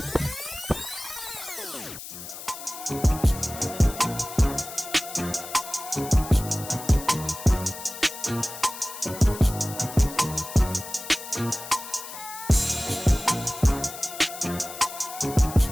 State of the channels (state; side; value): noise; left; hiss, 11 dB below the sound